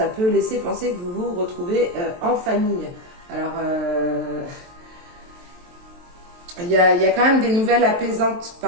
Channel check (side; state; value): left; late; 23 ms